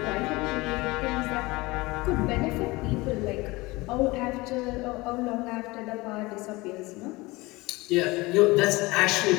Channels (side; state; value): right; quieter; 22.2 dB